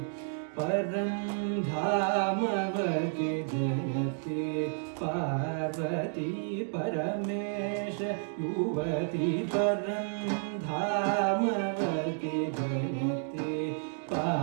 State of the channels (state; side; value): silent; left; digital silence